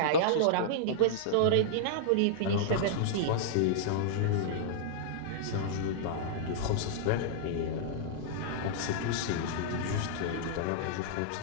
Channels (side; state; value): both; different; correlation -0.02